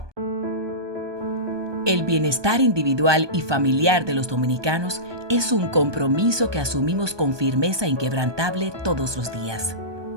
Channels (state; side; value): late; left; 1.2 ms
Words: El bienestar individual y familiar de los dominicanos es un compromiso que asumimos con firmeza inquebrantable todos los días.